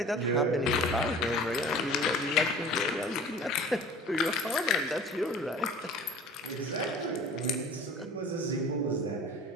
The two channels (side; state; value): both; normal; correlation 0.43